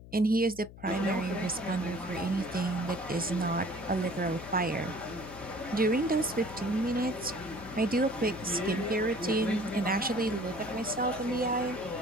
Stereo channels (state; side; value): noise; left; hum, 17 dB below the sound